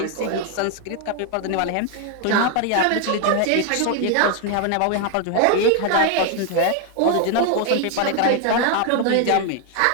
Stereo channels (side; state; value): both; different; correlation 0.01